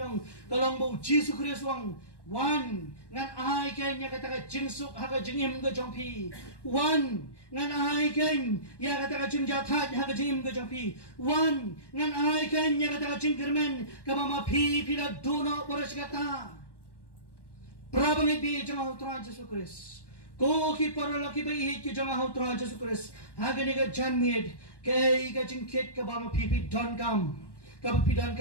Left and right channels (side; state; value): right; late; 1.1 ms